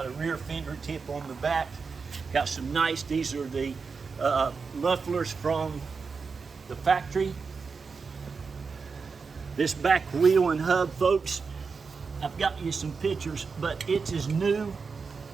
a rear fender tip on the back. Got some nice, these are the mufflers from the factory. This back wheel and hub, folks, I've got you some pictures, but it's as new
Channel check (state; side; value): quieter; left; 5.0 dB